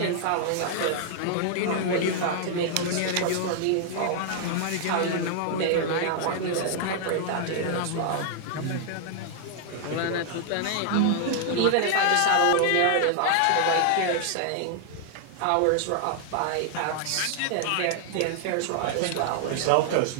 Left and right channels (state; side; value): different; both; correlation 0.00